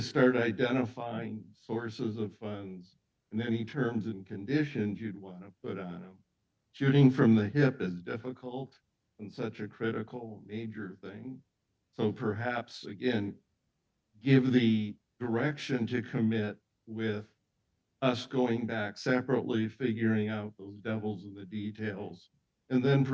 start identifying sources of funds and any terms and conditions you'd want to put on them. Shooting from the hip is difficult and such a critical, major thing. So perhaps, again, give the direction to commit with us going back separately, figuring out those devils in the details, and then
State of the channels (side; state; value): both; identical; correlation 1.00